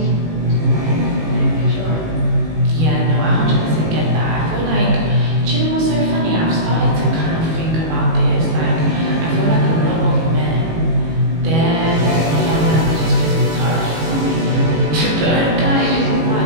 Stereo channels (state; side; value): late; left; 18 ms